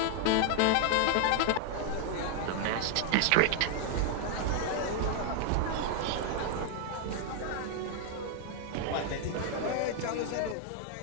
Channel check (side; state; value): both; different; correlation 0.00